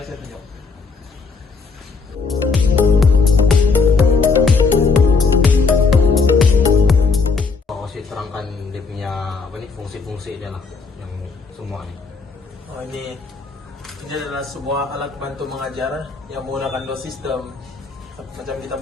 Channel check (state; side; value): quieter; right; 4.6 dB